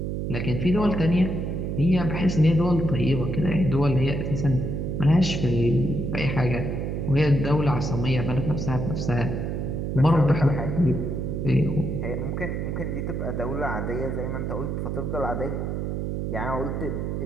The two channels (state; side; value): noise; right; hum, 2 dB below the sound